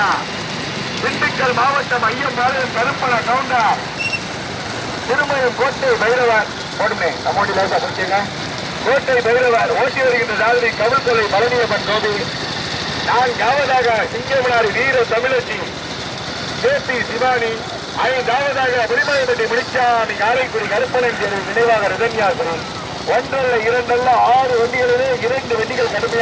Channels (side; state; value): both; identical; correlation 1.00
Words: திண்டுக்கல் மாவட்டம் ஐயம்பாளையம் கருப்பண கவுண்டர் திருமயம் கோட்டை பைரவர் போடுமே நம்மோடி லைட்டா பிடிச்சிங்க. கோட்டை பைரவர் ஓட்டி வருகின்ற சாரதி கவிழ்கொலை பழனியம்மன் கோபி. 4வதாக சிங்கமனாரி வீர தமிழச்சி கேபி சிவானி. 5வதாக பெருமலைப்பட்டி முடிச்சாமி காரைக்குடி கருப்பணன் தேர்வு நினைவாக ரிதன்யாசனம். 1 அல்ல 2 அல்ல 6 வண்டிகளிலே 2 வண்டிகள்